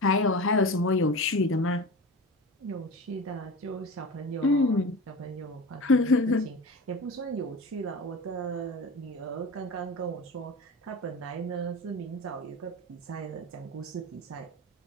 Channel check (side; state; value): both; normal; correlation 0.31